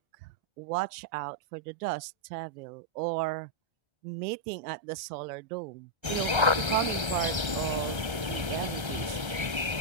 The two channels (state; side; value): late; left; 1.3 ms